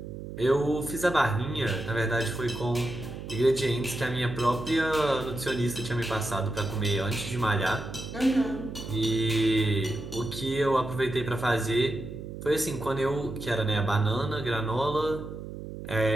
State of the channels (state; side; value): noise; right; hum, 10 dB below the sound